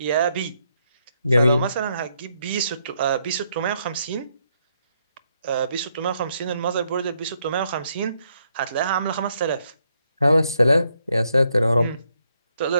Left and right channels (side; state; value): both; inverted; correlation -0.76